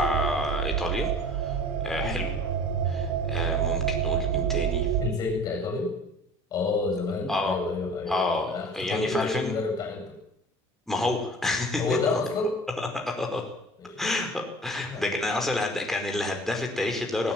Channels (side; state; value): both; normal; correlation 0.44